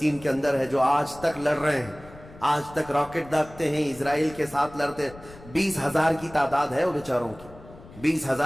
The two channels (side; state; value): left; noise; rumble, 20 dB below the sound